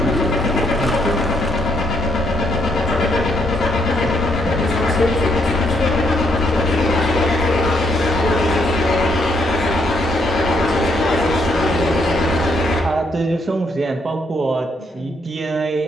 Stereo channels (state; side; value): normal; both; correlation 0.74